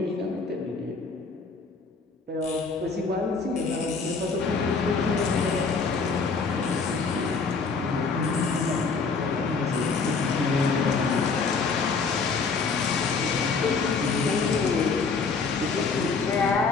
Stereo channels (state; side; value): quieter; right; 4.7 dB